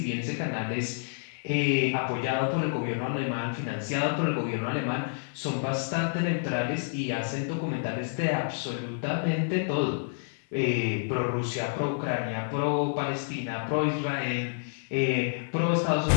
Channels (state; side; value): silent; right; 55 dB below the other